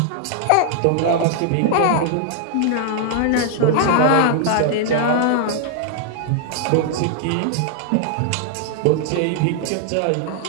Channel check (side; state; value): both; different; correlation 0.00